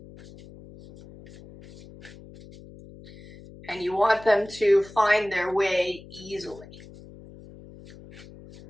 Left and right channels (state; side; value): noise; left; hum, 19 dB below the sound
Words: And you want them to find their way easily.